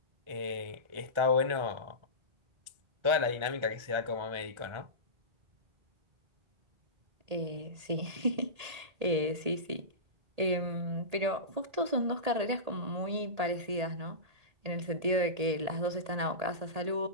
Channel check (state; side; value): late; left; 1.8 ms